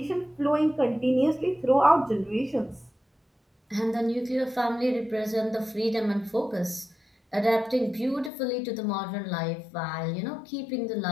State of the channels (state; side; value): drops out; right; at 8.3 s